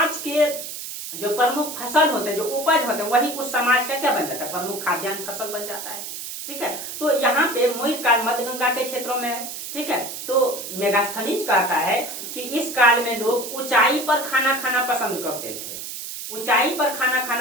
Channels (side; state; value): right; noise; hiss, 8 dB below the sound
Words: के जो प्रमुख फसल होते हैं, जो उपज होते हैं, वही उस समाज का क्या बन जाता है, प्रमुख खाद्यान्न फसल बन जाता है। ठीक है, तो यहाँ पे मौर्य काल मध्य गंगा के क्षेत्रों में है। ठीक है, तो मेगास्थनीज कहता है कि इस काल में लोग ऊंचाई पर खाना खाना पसंद करते थे, ऊंचाई पर खाना